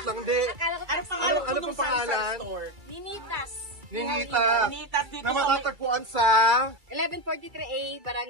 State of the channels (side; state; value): left; late; 2.3 ms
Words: lang. Hindi. Ano pong pangalan? Ninitas. Ninita. Ninitas dito Na sa... matatagpuan sa 1143A,